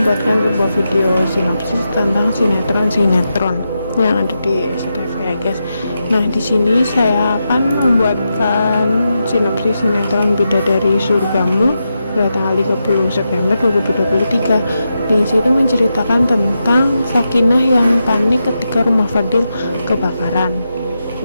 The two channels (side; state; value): both; inverted; correlation -0.87